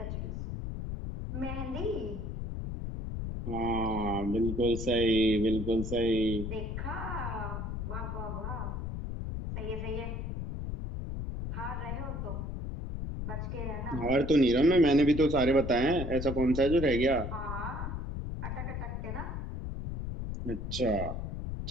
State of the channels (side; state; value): left; noise; rumble, 4 dB below the sound